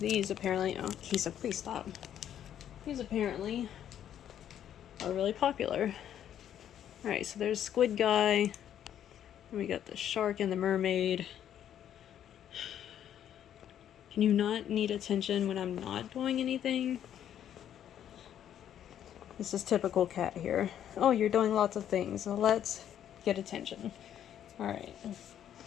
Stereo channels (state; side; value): quieter; right; 10.2 dB